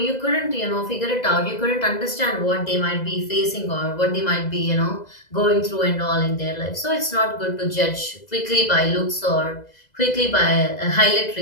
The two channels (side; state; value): right; late; 2.0 ms